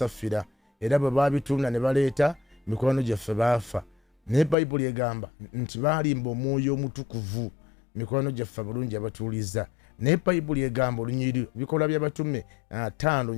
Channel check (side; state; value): right; drops out; at 4.5 s